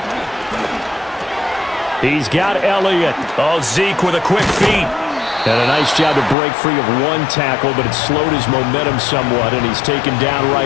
He's got Elliott. Oh, Zeke with a quick feet. And a nice job to break free of one tackle, but it slowed his momentum somewhat, and he's taken down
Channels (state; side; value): drops out; right; at 6.4 s